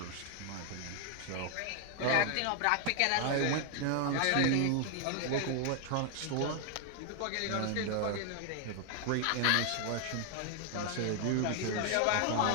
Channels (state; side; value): different; both; correlation 0.00